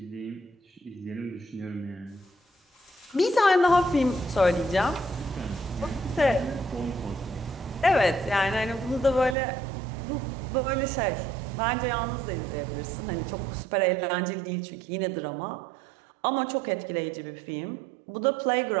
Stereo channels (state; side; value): drops out; left; at 9.3 s